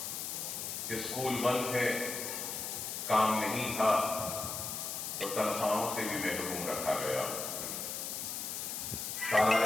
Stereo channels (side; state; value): left; noise; hiss, 4 dB below the sound